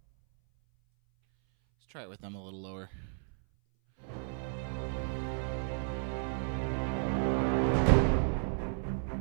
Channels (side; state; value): left; silent; 56 dB below the other